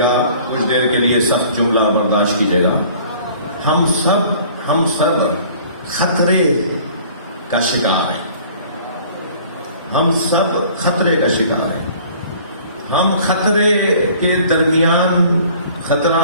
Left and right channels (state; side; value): inverted; both; correlation -0.51